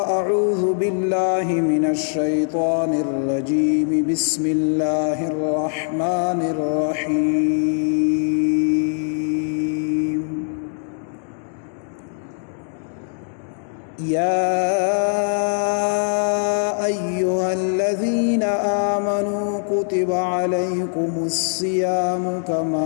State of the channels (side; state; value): right; silent; digital silence